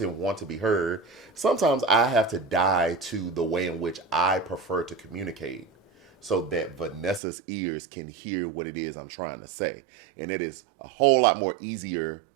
want to be heard, sometimes I have to die to the way in which I prefer to communicate so that Vanessa's ears can hear what it is I'm trying to say. And it is a whole lot more easier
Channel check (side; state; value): left; drops out; at 7.2 s